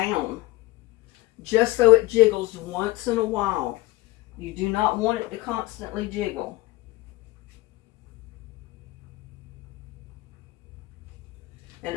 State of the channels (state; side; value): quieter; right; 19.9 dB